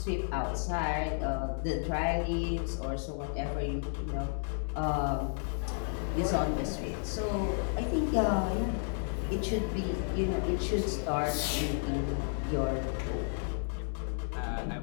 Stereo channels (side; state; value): right; silent; 56 dB below the other